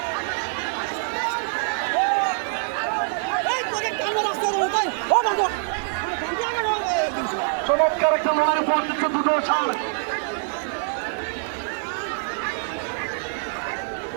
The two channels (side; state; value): left; silent; digital silence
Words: চমৎকার একটা লড়াই উপহার দিচ্ছে দুটো সার।